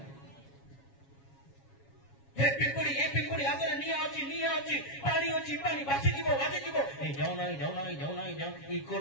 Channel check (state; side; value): late; right; 7.3 ms